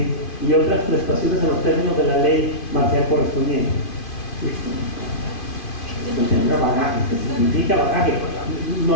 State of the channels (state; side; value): late; right; 2.5 ms